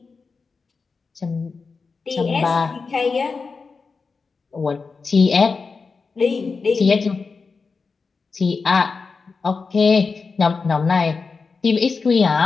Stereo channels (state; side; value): quieter; right; 4.7 dB